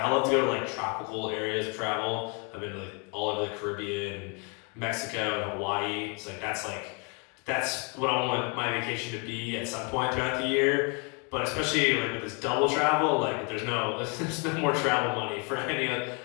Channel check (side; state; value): right; quieter; 34.4 dB